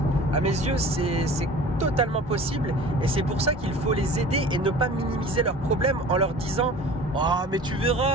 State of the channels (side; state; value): both; normal; correlation 0.42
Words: À mes yeux, c'est totalement possible. Et c'est pour ça qu'il faut les aider et ne pas minimiser leurs problèmes en leur disant « Oh, mais tu